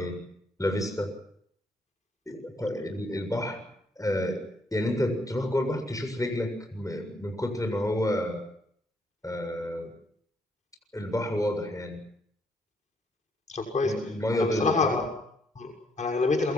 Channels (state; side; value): normal; both; correlation 0.71